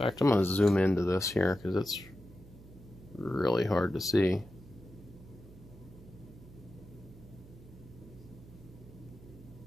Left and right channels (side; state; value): right; noise; hum, 19 dB below the sound